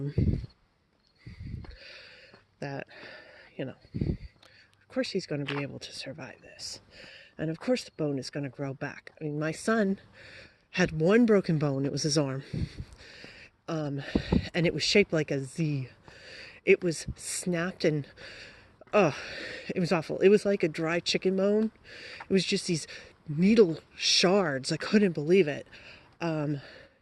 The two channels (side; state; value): both; identical; correlation 1.00